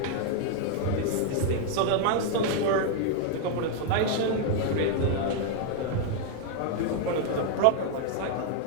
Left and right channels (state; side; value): different; both; correlation 0.00